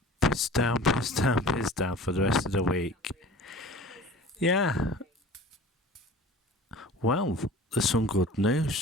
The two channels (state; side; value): normal; both; correlation 0.42